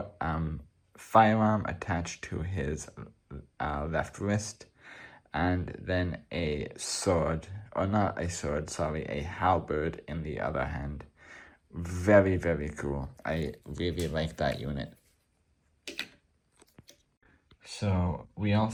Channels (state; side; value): identical; both; correlation 1.00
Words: firearm attached to his left wrist, and then a sword, or not a sword, sorry, a halberd in the other hand. Very cool. I really like that unit. So we